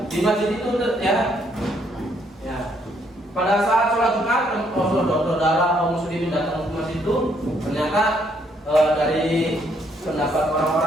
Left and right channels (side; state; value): both; normal; correlation 0.70